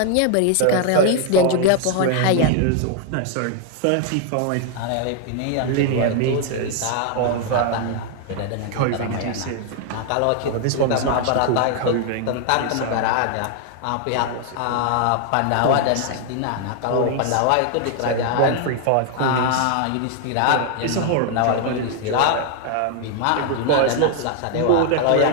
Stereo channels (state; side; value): different; both; correlation 0.00